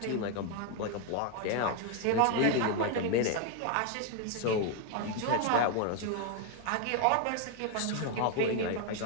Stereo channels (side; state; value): both; different; correlation 0.01